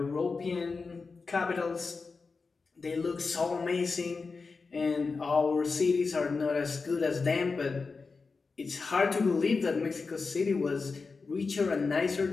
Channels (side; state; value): right; quieter; 4.4 dB